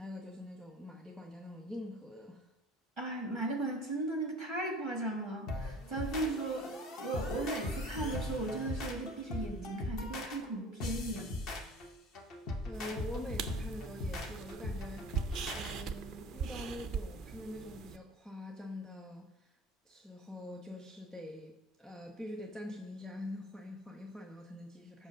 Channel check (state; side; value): normal; both; correlation 0.43